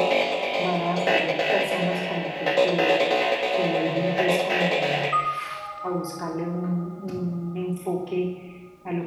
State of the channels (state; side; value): identical; both; correlation 1.00